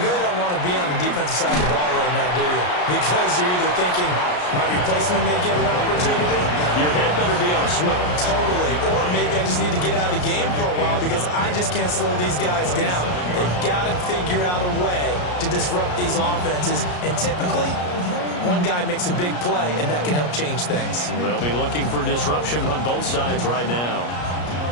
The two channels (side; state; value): right; late; 33 ms